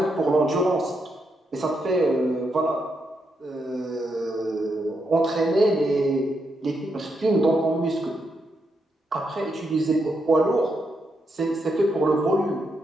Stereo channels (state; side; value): normal; both; correlation 0.81